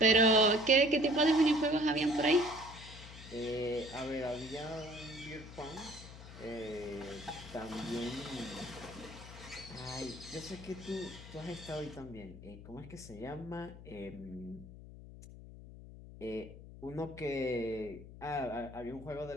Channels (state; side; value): noise; left; hum, 15 dB below the sound